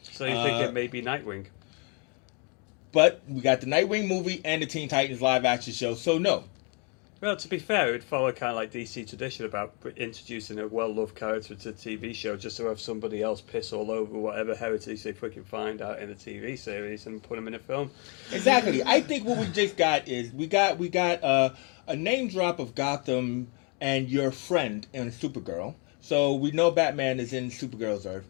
So you think it may be Nightwing? But we got the Nightwing movie and the Teen Titans live action show, so no. Well, to be fair, it would follow kind of like DC tradition about introducing a well-loved character to a TV show just to have somebody else piss all over whatever heritage they freaking find out in the TV series and put them in a film. Exactly. I think what we just got is we got a name drop of Gotham and your friend in Supergirl. So we know Batman is in Supergirl's Earth.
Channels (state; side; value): quieter; right; 34.6 dB